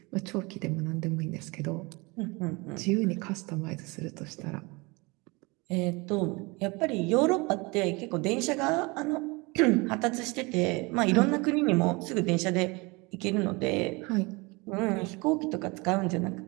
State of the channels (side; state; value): left; quieter; 26.3 dB